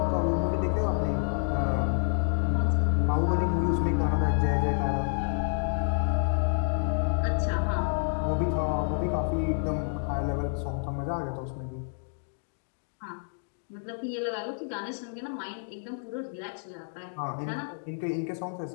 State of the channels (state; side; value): silent; right; digital silence